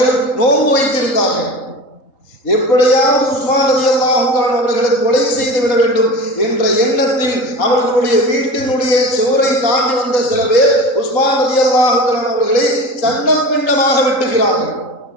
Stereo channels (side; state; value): right; late; 3.8 ms